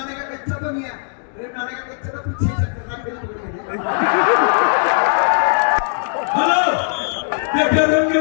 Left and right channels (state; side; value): silent; right; digital silence